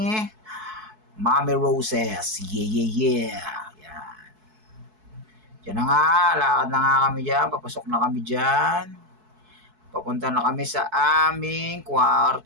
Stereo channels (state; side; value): late; left; 4.6 ms